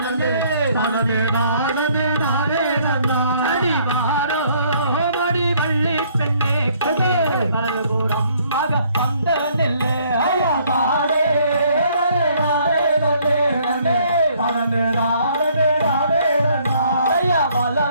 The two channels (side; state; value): both; inverted; correlation -0.63